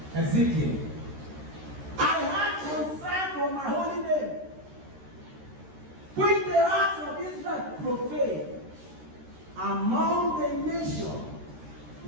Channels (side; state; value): left; late; 13 ms